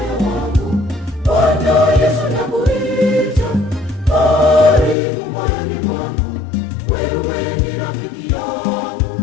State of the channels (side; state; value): right; drops out; at 5.0 s